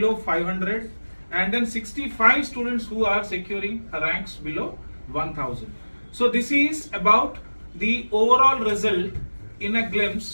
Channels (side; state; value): both; inverted; correlation -1.00